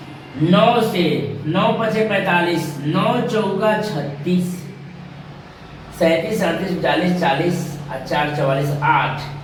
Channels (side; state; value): both; identical; correlation 1.00